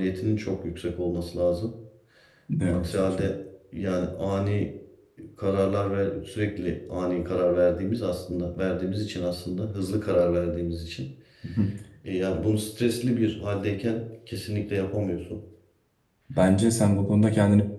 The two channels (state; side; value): identical; both; correlation 1.00